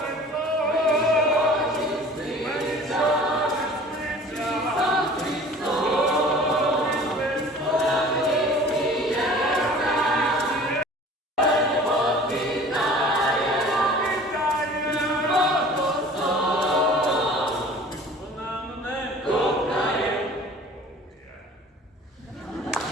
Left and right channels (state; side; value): normal; both; correlation 0.45